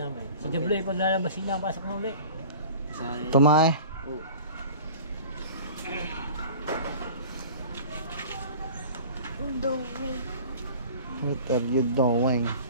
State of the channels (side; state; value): both; inverted; correlation -0.42